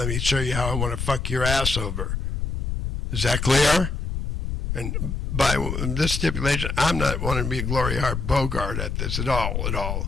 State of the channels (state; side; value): noise; left; rumble, 3 dB below the sound